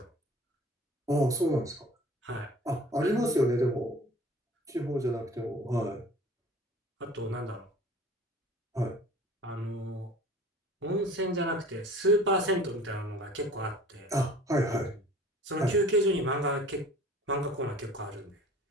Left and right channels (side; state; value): both; normal; correlation 0.46